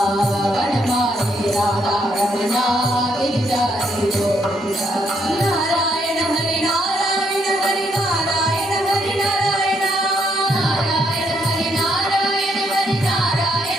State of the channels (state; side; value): normal; both; correlation 0.73